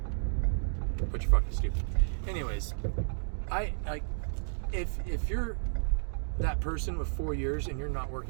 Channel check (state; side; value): silent; left; digital silence